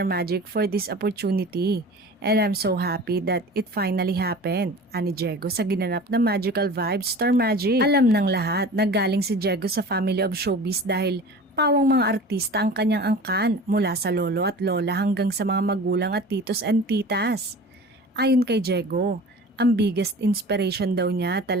Magic, for this opportunity. And I'm so happy that it finally happened. Ani Diego sa ginanap na Magical Vibes Star Magic. Alam ng lahat na galing si Diego sa family of showbiz dahil pawang mga artista ang kanyang angkan mula sa lolo at lola hanggang sa mga magulang at titos and titas. Ayon kay Diego, ang biggest inspiration daw niya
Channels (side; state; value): both; normal; correlation 0.39